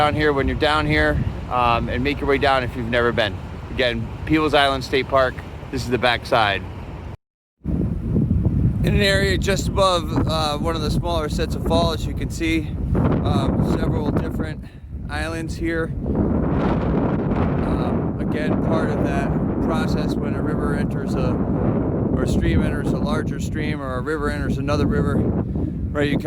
here when you're down here, and make your way down if you've never been. Again, Peebles Island State Park. This is the back side. in an area just above one of the smaller sets of falls. You can see several different islands here. Again, part of that process when a river enters or a stream enters a larger stream, or a river enters another river, right? You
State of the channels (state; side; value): identical; both; correlation 1.00